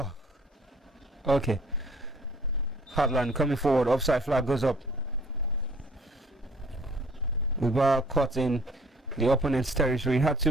okay. Heartland coming forward. Offside flag goes up. Mubarak caught in the opponent's territory. Had too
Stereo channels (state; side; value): normal; both; correlation 0.56